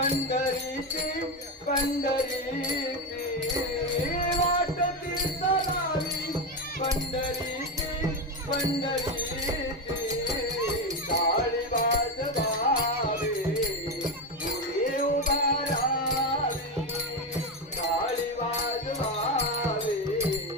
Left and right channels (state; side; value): normal; both; correlation 0.13